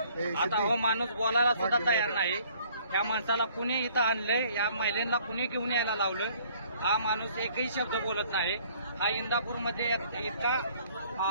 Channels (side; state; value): both; inverted; correlation -0.59